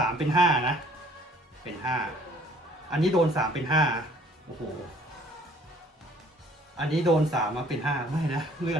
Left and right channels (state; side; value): normal; both; correlation 0.57